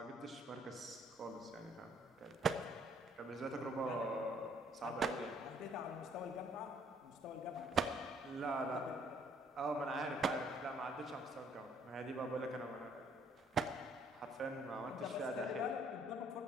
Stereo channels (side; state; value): both; normal; correlation 0.63